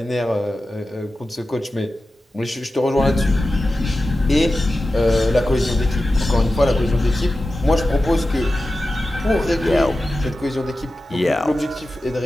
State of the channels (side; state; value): both; normal; correlation 0.93